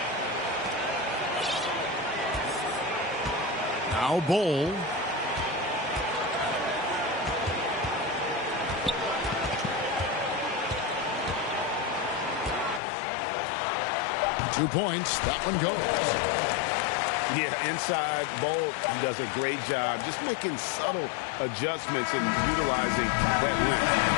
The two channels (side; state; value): right; drops out; at 12.8 s